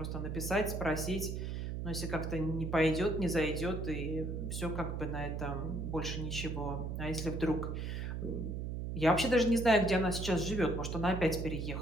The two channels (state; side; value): noise; right; hum, 3 dB below the sound